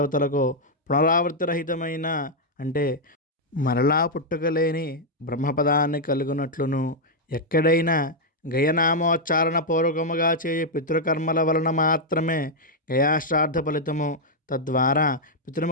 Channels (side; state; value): both; normal; correlation -0.03